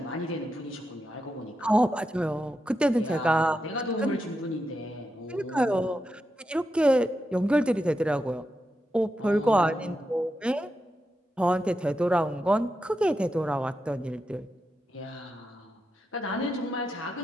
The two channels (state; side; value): normal; both; correlation 0.86